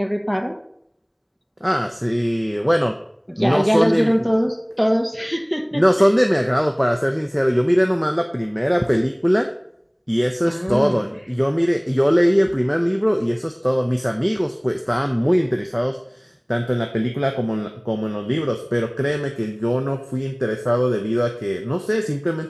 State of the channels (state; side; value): identical; both; correlation 1.00